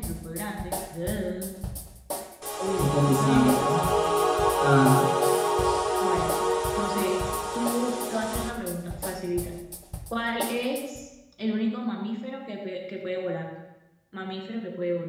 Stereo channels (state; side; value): identical; both; correlation 1.00